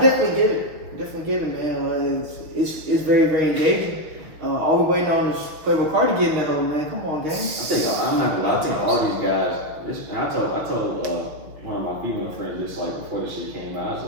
get it, man. It's very very engaging. All we waiting on is Playboy Cardi getting that hoe, man. Come on, gang. I'm not gonna lie, I think all these guys. I told one of my female friends this like before this shit came out. I was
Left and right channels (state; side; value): late; left; 6.2 ms